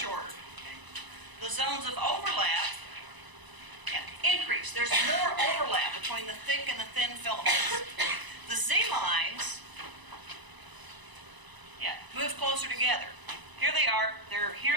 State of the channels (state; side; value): late; left; 1.0 ms